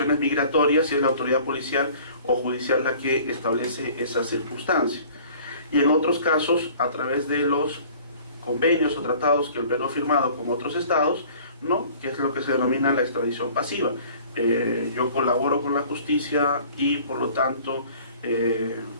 migratorias y es la autoridad policial o judicial la que establece esa circunstancia. Y en otros casos, a través de los convenios o tratados que el Perú ha firmado con otros estados, ¿no? Que es lo que se denomina la extradición pasiva. Yo colaboro con la justicia y por lo tanto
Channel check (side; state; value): both; inverted; correlation -0.49